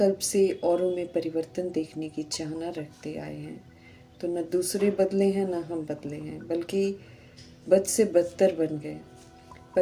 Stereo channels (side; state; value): both; identical; correlation 1.00